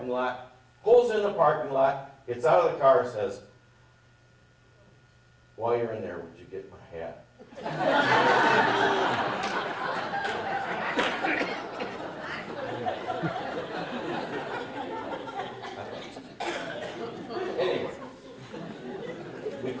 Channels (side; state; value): both; identical; correlation 1.00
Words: lot, pulls in the parking lot, gets out of the car and says, "While you're in there, would you get my hat?" Anyway, we